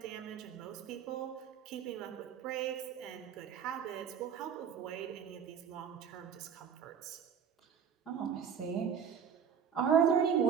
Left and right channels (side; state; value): left; quieter; 7.7 dB